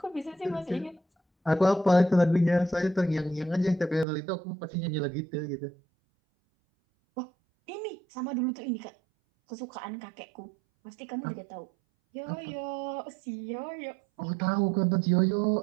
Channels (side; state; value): left; drops out; at 4.0 s